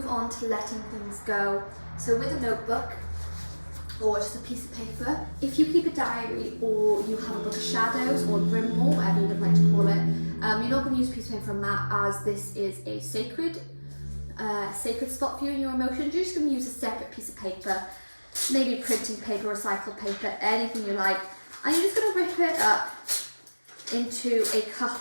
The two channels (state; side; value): inverted; both; correlation -1.00